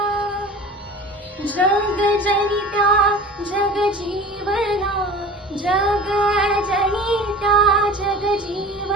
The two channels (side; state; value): both; normal; correlation 0.39